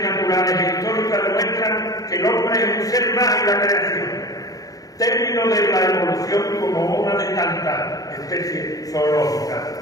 naturales e históricas demuestran que el hombre es un ser más en la creación, término de la evolución como una de tantas especies zoológicas,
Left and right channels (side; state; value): right; late; 0.17 ms